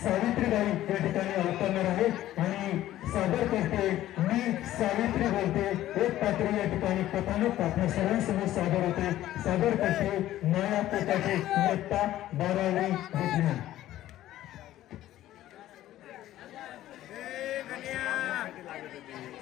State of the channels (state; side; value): quieter; right; 13.9 dB